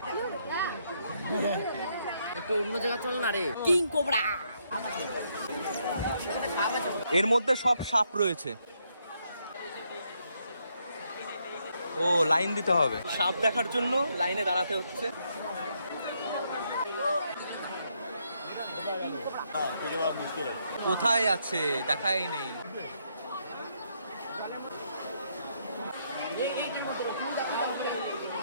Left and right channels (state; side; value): inverted; both; correlation -0.75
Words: একটু অন্য জায়গা চল না রে, কিং কোবরা। এর মধ্যে সব সাপ রয়েছে। ও লাইন দিতে হবে, সাপ দেখার জন্য লাইনে দাঁড়াতে হচ্ছে। কোথায় আছে দেখাই নেই।